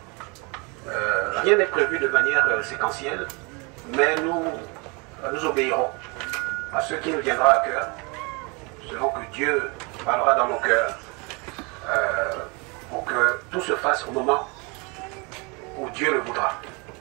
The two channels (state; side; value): quieter; left; 29.9 dB